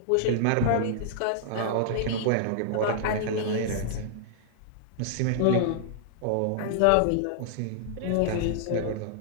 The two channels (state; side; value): different; both; correlation -0.01